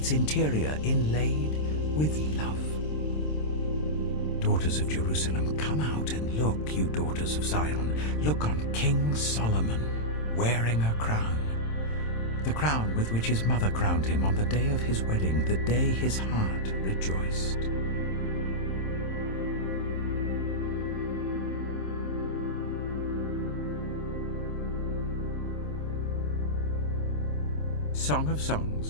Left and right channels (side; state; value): right; late; 27 ms